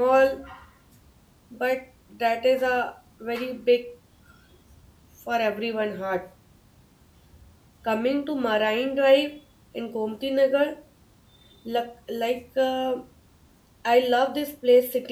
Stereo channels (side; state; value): both; identical; correlation 1.00